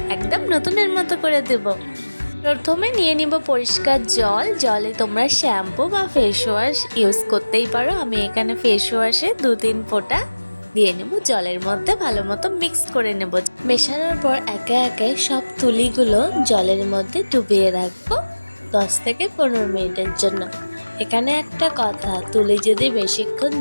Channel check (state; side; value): inverted; both; correlation -1.00